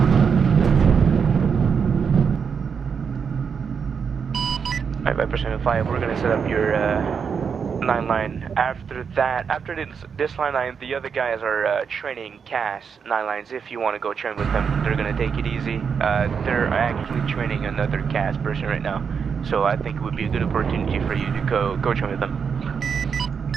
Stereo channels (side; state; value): left; quieter; 6.4 dB